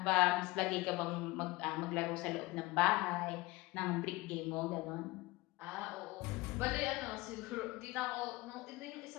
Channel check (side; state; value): right; quieter; 21.3 dB